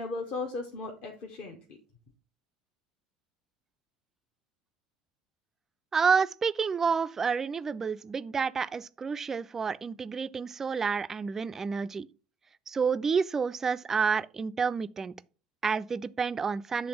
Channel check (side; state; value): left; quieter; 5.0 dB